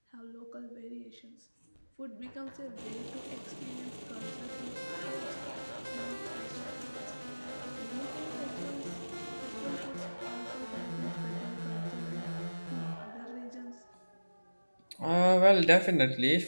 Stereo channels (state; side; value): inverted; both; correlation -1.00